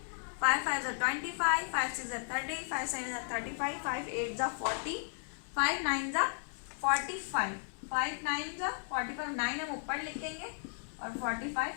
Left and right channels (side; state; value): right; silent; digital silence